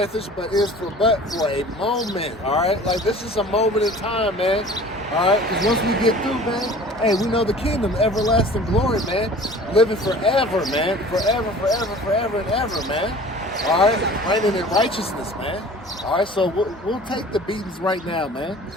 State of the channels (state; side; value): normal; both; correlation 0.44